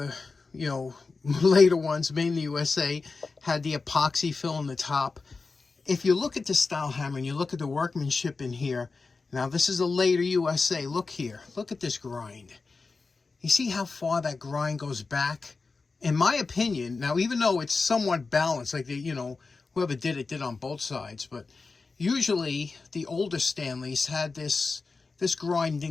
you know, later ones made in the USA, had the epoxy fill in the top. If you look at the style hammer and you look at the workmanship in here, now this is a later USA. Look here. Look at this grind. You see how far that grind goes back? In my opinion, now even though it's somewhat balanced, like the, you know, whoever did it did on both sides, but usually the older Stanleys had this grind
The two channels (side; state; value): right; quieter; 4.2 dB